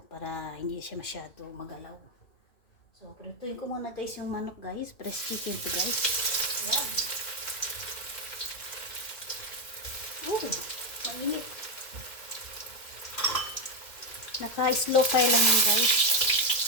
para hindi siya masyado magalaw. So, prituin ko muna guys yung manok guys, press chicken to guys. Yan. Mainit. Naka-slow fire lang yan guys.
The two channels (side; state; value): right; late; 2.1 ms